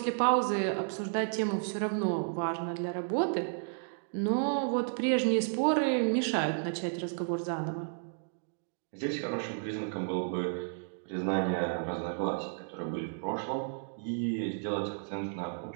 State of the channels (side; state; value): left; silent; digital silence